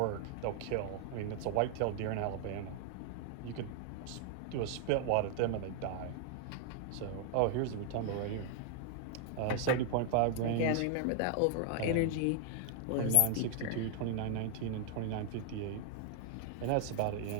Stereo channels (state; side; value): different; both; correlation 0.00